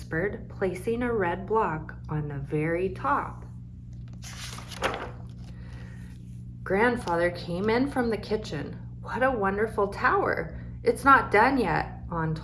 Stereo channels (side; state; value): both; identical; correlation 1.00